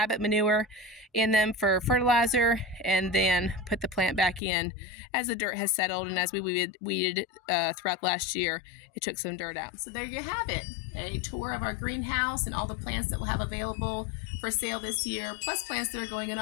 manure in them for fertilizer, and then put the plant back in as the dirt has settled. And as we weeded throughout last year, it took some dirt out. So there you have it, a tour of our greenhouse and all the plants that we'll have available for sale this year, plus plants that are going in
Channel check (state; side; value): drops out; right; at 4.4 s